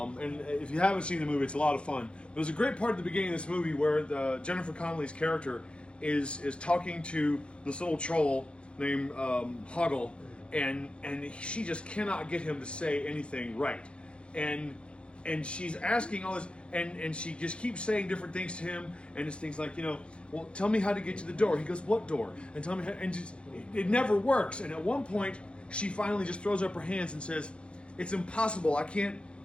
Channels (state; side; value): late; right; 0.057 ms